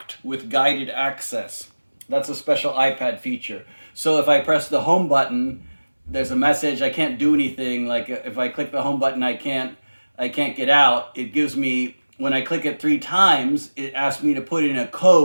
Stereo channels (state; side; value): inverted; both; correlation -1.00